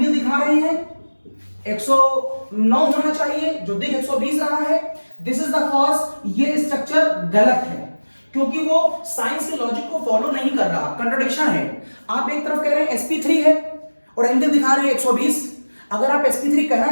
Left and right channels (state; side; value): inverted; both; correlation -1.00